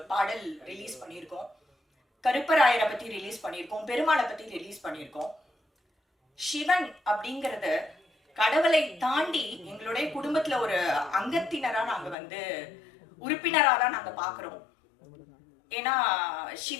பாடல் ரிலீஸ் பண்ணியிருக்கோம். கருப்பராயரை பத்தி ரிலீஸ் பண்ணியிருக்கோம். பெருமாளை பத்தி ரிலீஸ் பண்ணியிருக்கோம். சிவன் அப்படிங்கறது கடவுளை தாண்டி எங்களுடைய குடும்பத்துல ஒரு அங்கத்தினரா நாங்க வந்து உறுப்பினரா தான் நாங்க பாக்குறோம். ஏன்னா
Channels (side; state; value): right; drops out; at 12.2 s